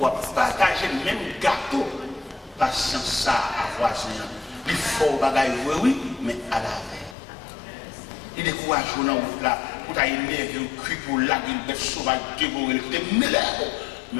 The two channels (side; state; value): right; drops out; at 7.2 s